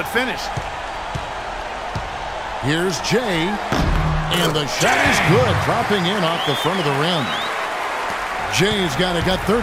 finished. Here's Jay, and the shot is good, dropping in off the front of the rim. Jay's got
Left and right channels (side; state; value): both; identical; correlation 1.00